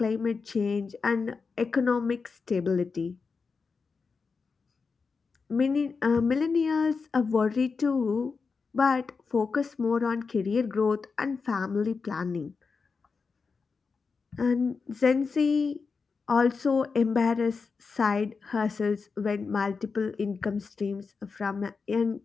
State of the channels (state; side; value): quieter; right; 4.9 dB